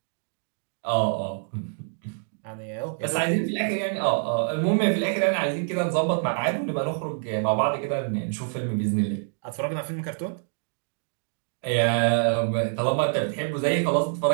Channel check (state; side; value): silent; left; digital silence